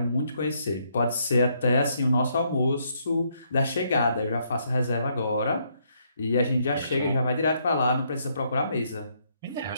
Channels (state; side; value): inverted; both; correlation -0.73